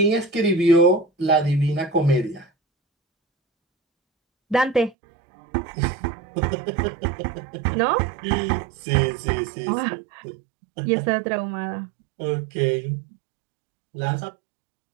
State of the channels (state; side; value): drops out; left; at 5.0 s